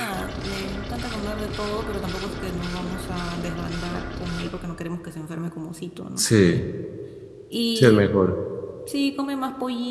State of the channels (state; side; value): identical; both; correlation 1.00